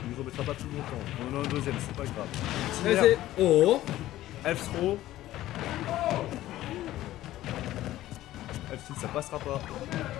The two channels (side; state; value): right; quieter; 14.8 dB